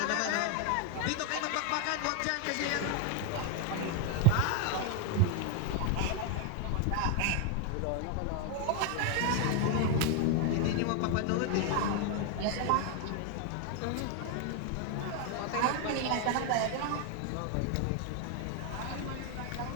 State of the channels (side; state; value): both; different; correlation 0.01